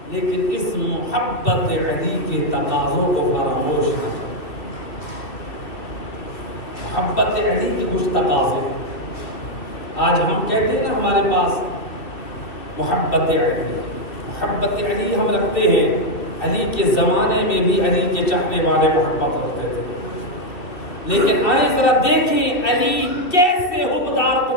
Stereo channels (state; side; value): late; right; 2.4 ms